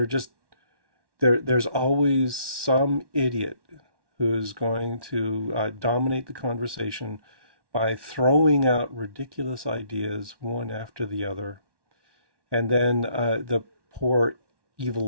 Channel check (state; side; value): late; left; 1.1 ms